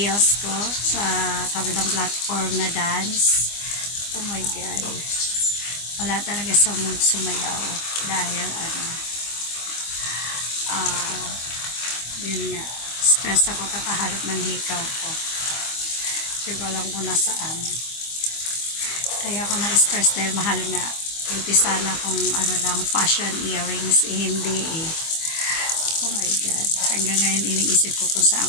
ko, sa kabilang platform na dance. Oh my God. Wala talaga sa mood sumayaw. Dahil yun nga, stress ako kakaharap ng hikaw ko. Hindi ko alam kung nasaan. Kaya ako na-stress dahil mahal nga. Buti sana kung fashion earrings, hindi eh. Oh my God. Hanggang ngayon iniisip ko kung saan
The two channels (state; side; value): late; right; 25 ms